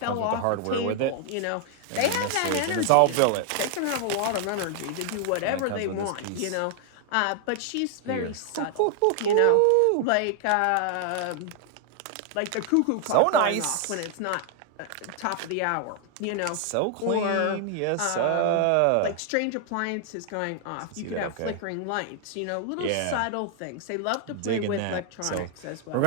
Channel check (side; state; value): both; different; correlation 0.00